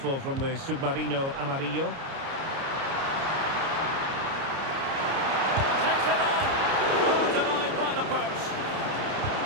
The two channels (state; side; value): late; left; 30 ms